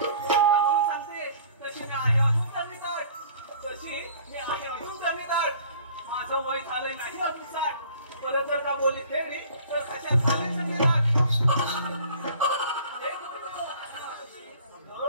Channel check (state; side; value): inverted; both; correlation -0.50